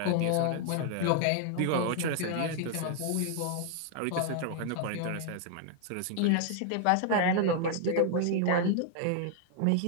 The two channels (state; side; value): different; both; correlation 0.00